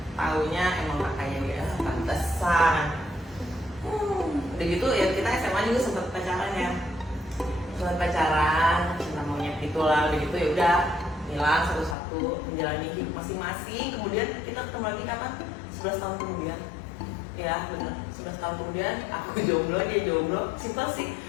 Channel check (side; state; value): right; drops out; at 12.0 s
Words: taunya emang kakaknya dia, pantesan. Udah gitu ya kita SMA juga sempet pacaran ya. Sempet pacaran, cinta monyet gitulah, udah gitu ya udah hilang satu-satu, menjalani hidup masing-masing. Kemudian kita ketemu lagi kapan? 11 tahun kemudian. Ya benar, 11 tahun kemudian aku jomblo, dia jomblo, simpel sih.